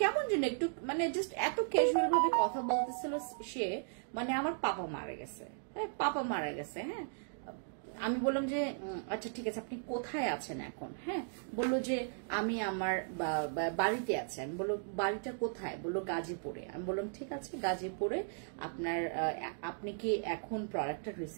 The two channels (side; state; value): left; silent; digital silence